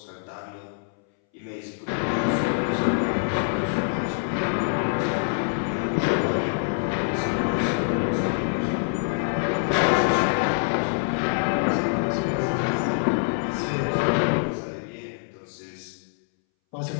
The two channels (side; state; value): right; silent; 62 dB below the other